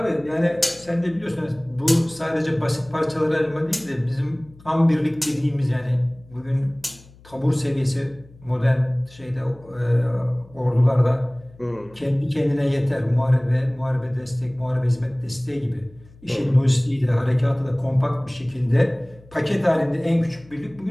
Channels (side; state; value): left; noise; hum, 24 dB below the sound